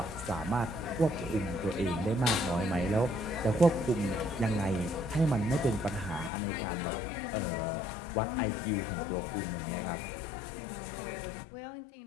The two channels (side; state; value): right; drops out; at 6.3 s